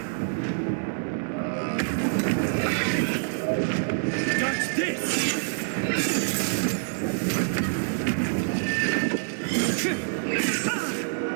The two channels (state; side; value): silent; left; 61 dB below the other